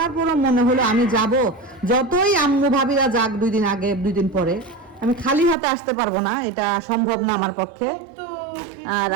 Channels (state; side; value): drops out; left; at 5.6 s